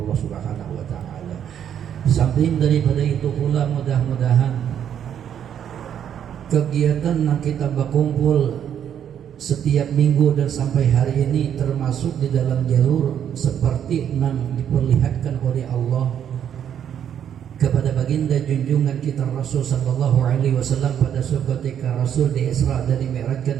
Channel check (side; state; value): left; quieter; 9.2 dB